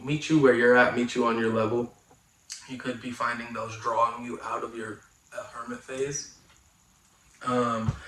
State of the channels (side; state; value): both; identical; correlation 1.00